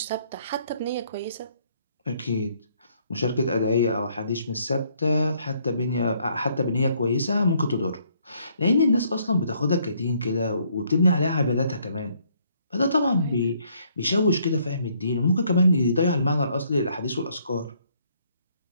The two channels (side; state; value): both; inverted; correlation -0.67